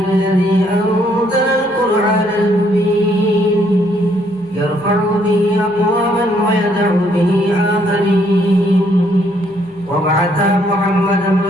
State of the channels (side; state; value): left; noise; hum, 30 dB below the sound